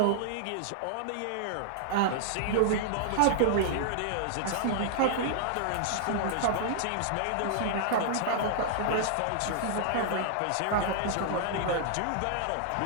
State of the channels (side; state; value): both; different; correlation -0.01